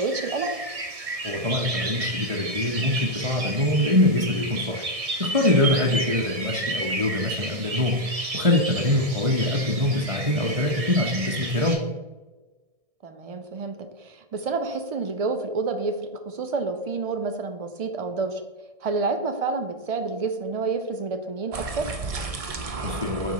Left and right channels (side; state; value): left; late; 1.6 ms